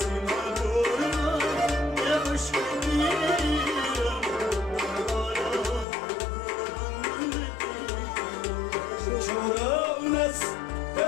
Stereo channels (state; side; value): drops out; right; at 5.9 s